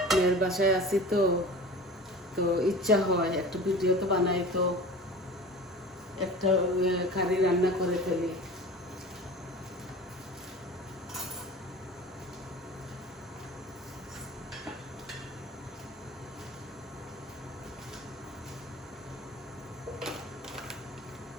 মেয়ের বাসায় আছি তো তো ইচ্ছা হয় একটা ভিডিও তো বানাই, তো একটা কারি রান্না করে ফেলি।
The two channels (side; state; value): both; normal; correlation 0.37